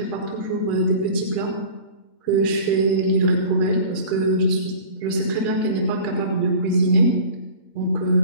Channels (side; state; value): right; late; 8.7 ms